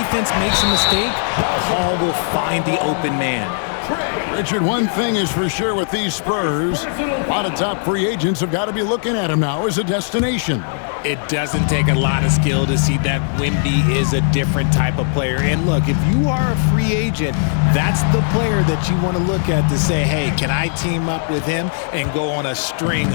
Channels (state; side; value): silent; right; digital silence